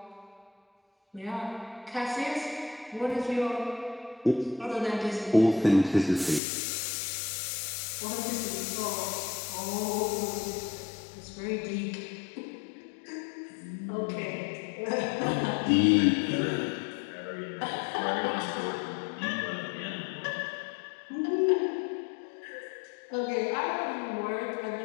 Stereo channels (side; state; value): right; drops out; at 6.4 s